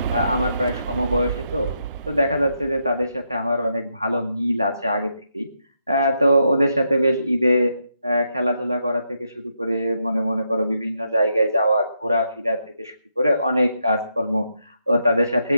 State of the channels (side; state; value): both; inverted; correlation -0.81